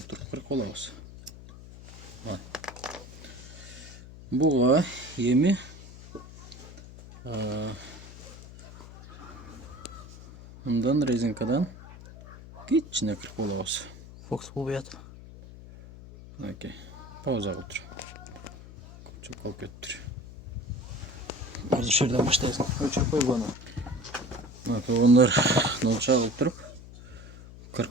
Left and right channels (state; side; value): noise; left; hum, 16 dB below the sound